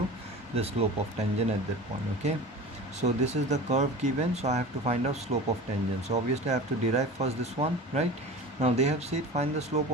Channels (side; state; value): both; normal; correlation 0.35